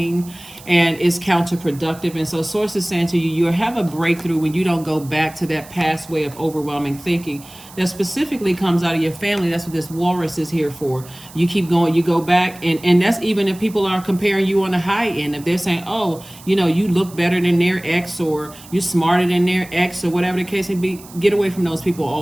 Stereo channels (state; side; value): noise; right; hiss, 20 dB below the sound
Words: and it's counterproductive. And so Source is saying to you, you have a breakthrough when you don't go back to that past way of overwhelming thinking that specifically comes out of your family. That's what this walrus is here for. You keep going, you go back, and that's even if people are comparing you on the high end. If they're saying, oh, you know, you look better than their ex, or you're smarter than their ex, or whatever the case may be, get away from those people